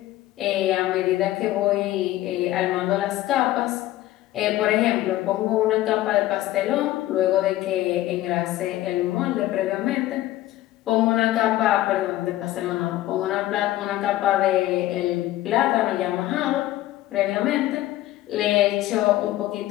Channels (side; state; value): right; quieter; 15.4 dB